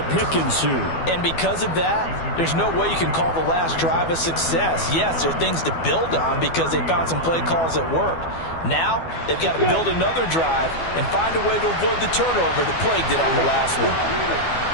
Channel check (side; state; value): right; late; 12 ms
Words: pick ensued. And because of that, there's no way you can call the last drive a success. Yes, there are things to build on because they found some play calls that worked. Now, they've got to build another drive and find a way to avoid the turnover that plagued it on the last one.